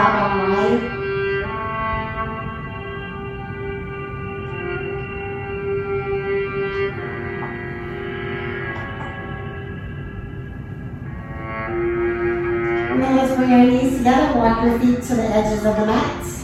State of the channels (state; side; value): identical; both; correlation 1.00